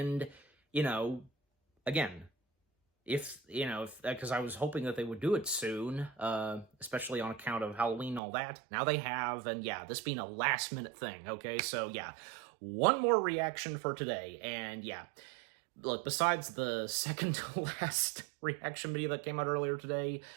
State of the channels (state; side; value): drops out; left; at 8.2 s